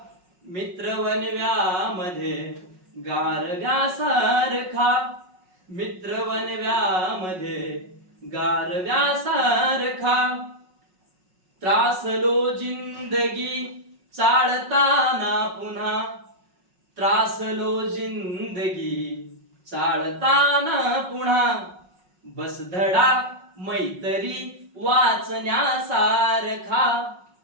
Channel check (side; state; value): left; late; 5.4 ms